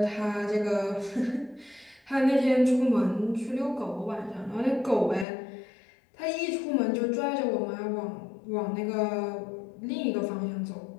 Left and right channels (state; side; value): drops out; right; at 5.2 s